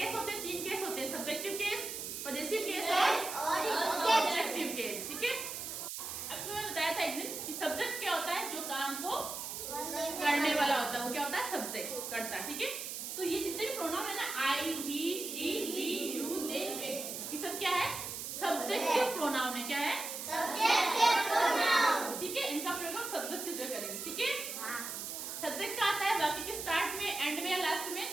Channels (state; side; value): noise; right; hiss, 6 dB below the sound